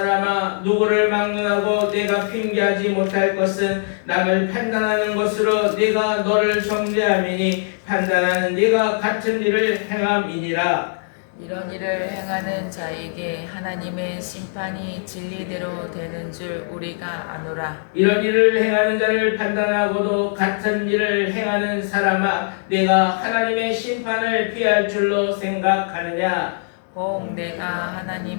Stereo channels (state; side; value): silent; right; digital silence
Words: 누구를 막론하고 네가 핑계하지 못할 것은 남을 판단하는 것으로 네가 너를 정죄함이니 판단하는 네가 같은 일을 행함이니라. 이런 일을 행하는 자에게 하나님의 심판이 진리대로 되는 줄 우리가 아노라. 이런 일을 행하는 자를 판단하고도 같은 일을 행하는 사람아, 내가 하나님의 심판을 피할 줄로 생각하느냐? 혹 내가